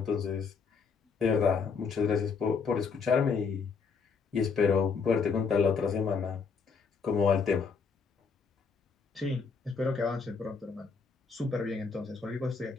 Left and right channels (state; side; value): quieter; right; 5.4 dB